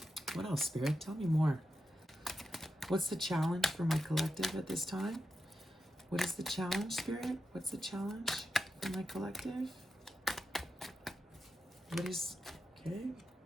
What else, Spirit? Tell me more. What's the challenge for my collective at this time? What is the challenge, Spirit? What's the challenge for my collective? What is, okay,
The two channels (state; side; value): normal; both; correlation 0.89